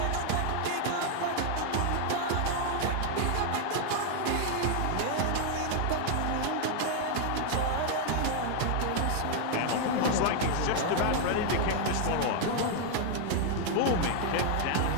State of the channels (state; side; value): different; both; correlation 0.00